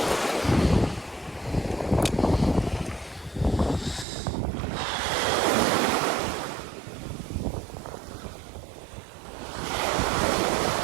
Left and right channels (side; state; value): left; drops out; at 4.0 s